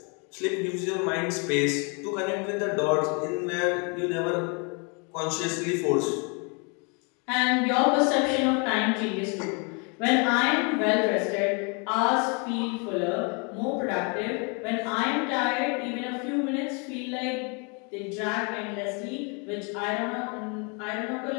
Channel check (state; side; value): quieter; right; 34.2 dB